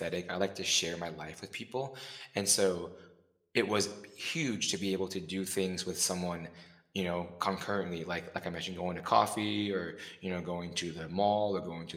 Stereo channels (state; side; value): identical; both; correlation 1.00